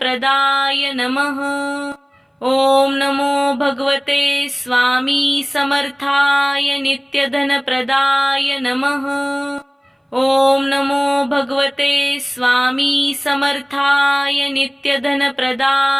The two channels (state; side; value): identical; both; correlation 1.00